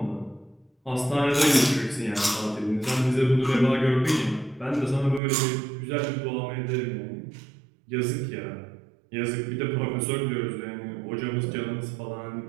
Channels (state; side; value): drops out; left; at 5.2 s